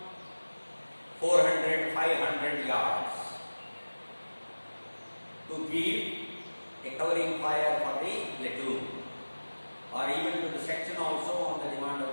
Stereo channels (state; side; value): inverted; both; correlation -1.00